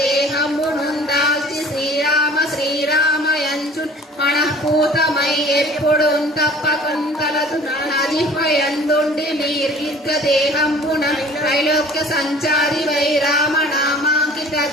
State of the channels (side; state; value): both; normal; correlation 0.48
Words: నుందాల్చి శ్రీరామ శ్రీరామయంచున్ మనఃపూతమై ఎప్పుడు తప్పకుంతలదు నజిహ్వయందుండి నిర్విద్గ దేహంబున త్రైలోక్య సంచారి వై రామనామాంకిత